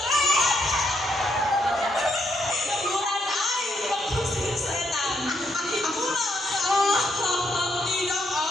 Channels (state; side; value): normal; both; correlation 0.76